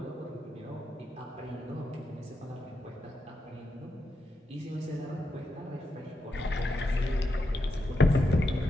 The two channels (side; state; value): both; normal; correlation 0.85